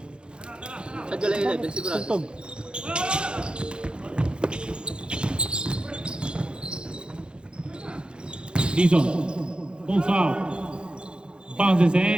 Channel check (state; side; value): late; left; 0.053 ms